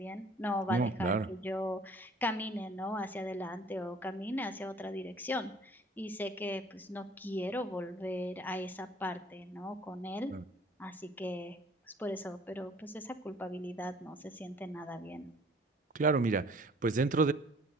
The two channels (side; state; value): both; normal; correlation 0.54